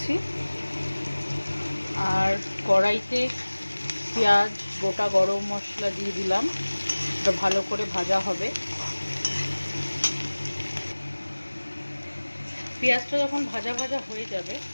আর কড়াইতে পেঁয়াজ, গোটা গরম মশলা দিয়ে দিলাম। এটা ভালো করে ভাজা হবে। পেঁয়াজটা যখন ভাজা ভাজা হয়ে যাবে,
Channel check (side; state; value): both; inverted; correlation -1.00